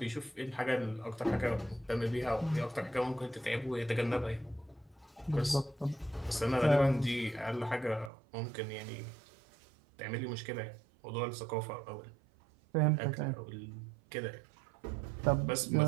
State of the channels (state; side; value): drops out; left; at 8.1 s